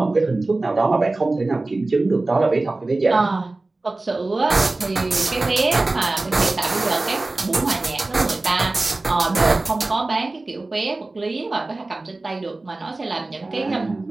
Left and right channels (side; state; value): left; quieter; 3.1 dB